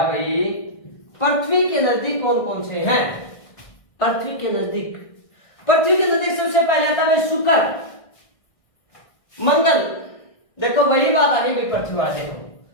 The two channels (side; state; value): right; late; 1.6 ms